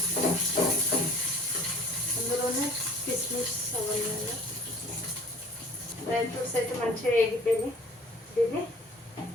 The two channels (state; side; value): normal; both; correlation 0.50